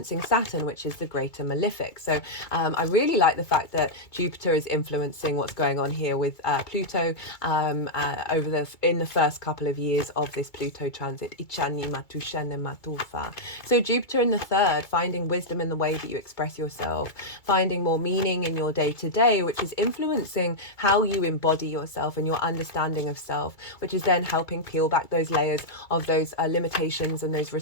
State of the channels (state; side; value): late; right; 2.3 ms